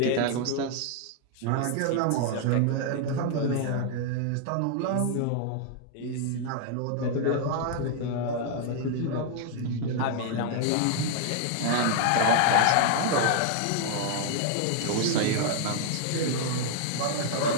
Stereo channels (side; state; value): both; different; correlation 0.00